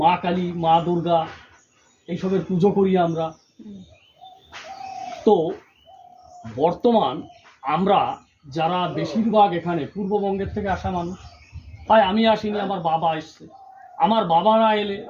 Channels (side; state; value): both; identical; correlation 1.00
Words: মা কালী মা দুর্গা এইসবের পুজো করি আমরা। তো বর্তমান আমরা যারা বেশিরভাগ এখানে পূর্ববঙ্গের থেকে আসা মানুষ, তাই আমি আসিনি, আমার বাবা এসছে, আমার বাবা না এলে